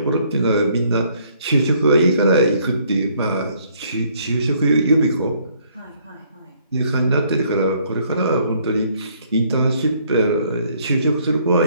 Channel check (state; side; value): inverted; both; correlation -0.65